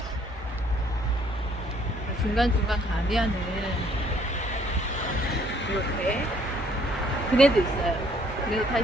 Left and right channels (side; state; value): both; normal; correlation 0.63